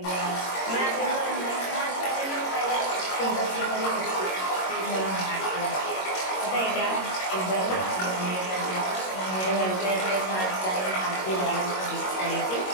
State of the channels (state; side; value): late; right; 22 ms